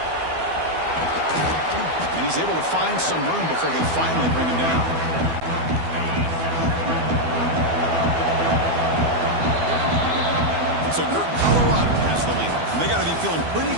And he's able to find some room before they finally bring him down. So Colorado has the lead. And they got to be feeling pretty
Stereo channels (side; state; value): left; late; 12 ms